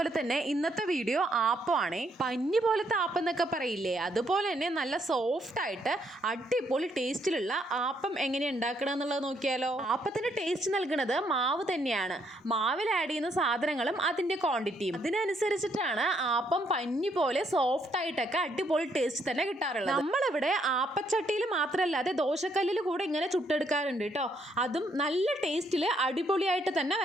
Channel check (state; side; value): normal; both; correlation 0.72